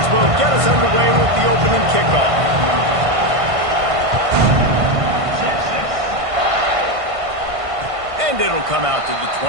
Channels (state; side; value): late; left; 1.5 ms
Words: will get us underway with the opening kickoff. And it'll come out to the